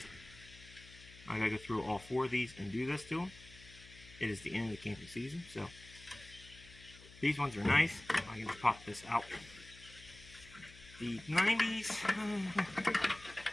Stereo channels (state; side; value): noise; left; hum, 19 dB below the sound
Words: I got to go through all 4 of these and do this to them. It is the end of the camping season, so these ones are nice. I'm going to pop this out. The 90s,